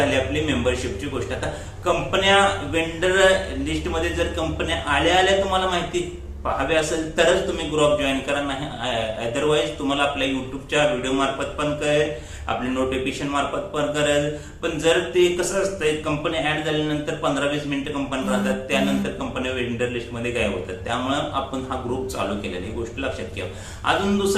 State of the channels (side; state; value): both; identical; correlation 1.00